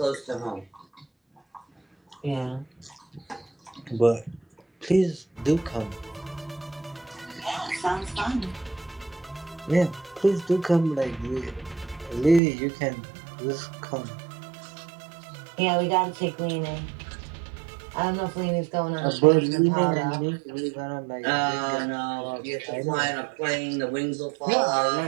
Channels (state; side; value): drops out; left; at 12.4 s